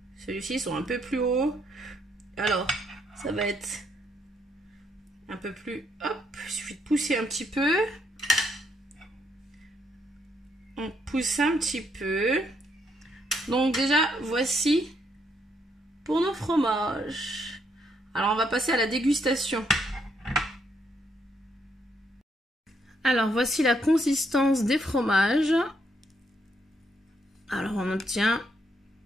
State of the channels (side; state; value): both; normal; correlation 0.74